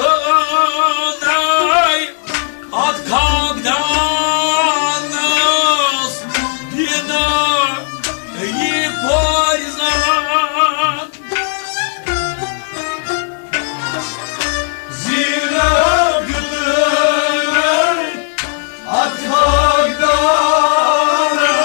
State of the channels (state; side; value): silent; right; digital silence